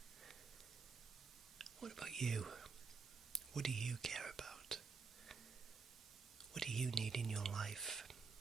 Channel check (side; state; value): left; quieter; 5.0 dB